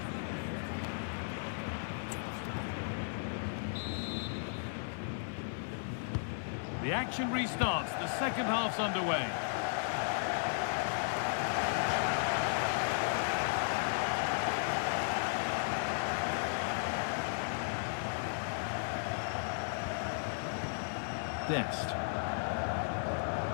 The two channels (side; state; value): right; silent; digital silence